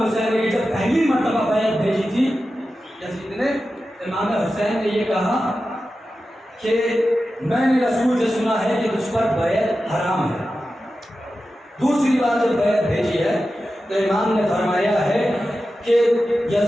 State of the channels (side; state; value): both; normal; correlation 0.92